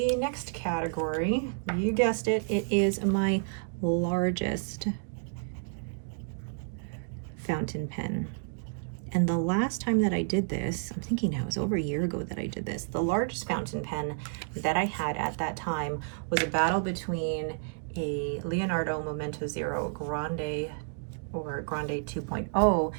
next category, you guessed it, it is my largest fountain pen. And the last time that I did this, I'm thinking now, it was over a year ago that I did this. The largest fountain pen that I had at that time was a battle between a Leonardo Momento Zero Grande or Grande 2.0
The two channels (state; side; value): silent; left; digital silence